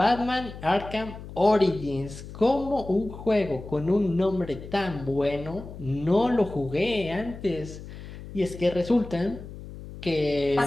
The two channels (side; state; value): left; noise; hum, 13 dB below the sound